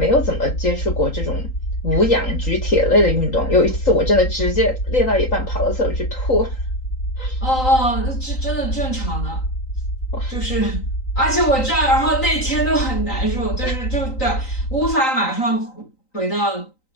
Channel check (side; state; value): right; late; 3.9 ms